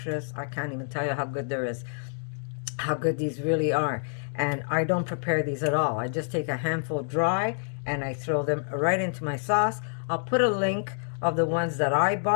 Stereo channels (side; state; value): right; silent; digital silence